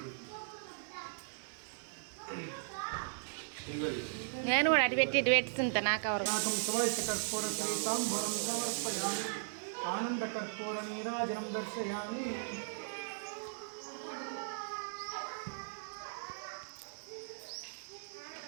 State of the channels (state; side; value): silent; left; 53 dB below the other